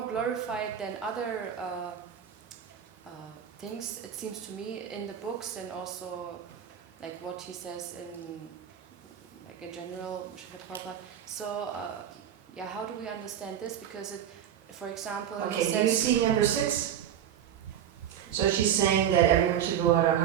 glorified than other things. It seems to me in the books, and also like what he says in general, Srila Prabhupada. So how do we understand this? Because it, for example, Okay, he do you says see number 6? So she's saying that everyone should go out on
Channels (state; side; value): quieter; left; 9.7 dB